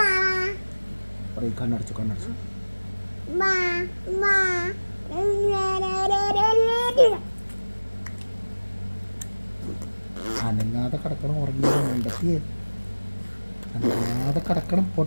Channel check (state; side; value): inverted; both; correlation -1.00